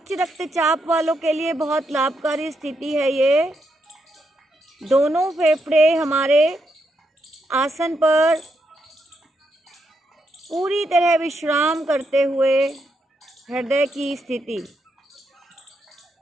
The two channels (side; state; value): both; normal; correlation 0.81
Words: रक्तचाप वालों के लिए बहुत लाभकारी स्थिति है ये। दोनों फेफड़े हमारे आसन पर पूरी तरह विश्राम करते हुए हृदय की स्थिति।